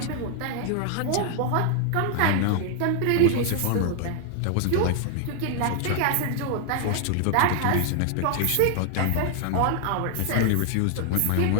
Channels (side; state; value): both; different; correlation 0.00